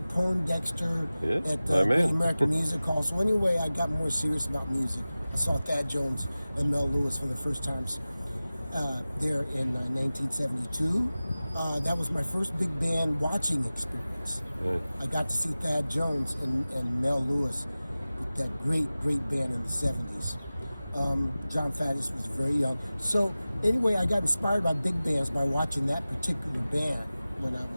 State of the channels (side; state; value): both; inverted; correlation -0.97